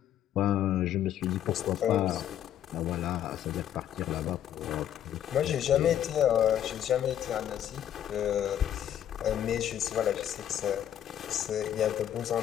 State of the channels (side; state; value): right; quieter; 10.6 dB